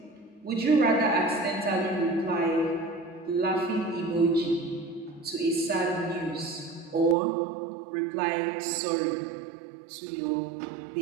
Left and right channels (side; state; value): left; drops out; at 7.2 s